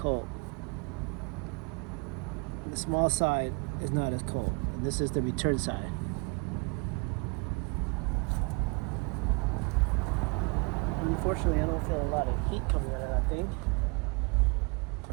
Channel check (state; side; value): quieter; left; 31.5 dB